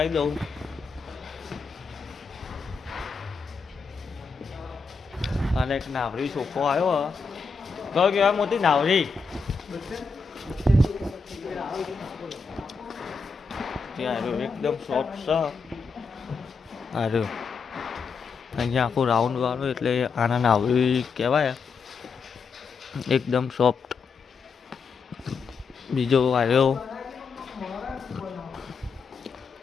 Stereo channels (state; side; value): quieter; right; 4.9 dB